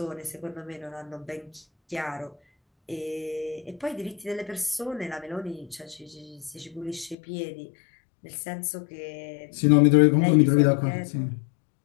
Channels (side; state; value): right; drops out; at 7.2 s